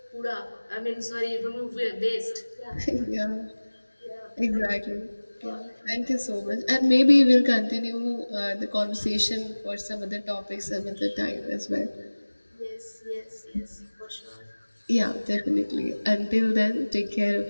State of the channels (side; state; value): both; inverted; correlation -1.00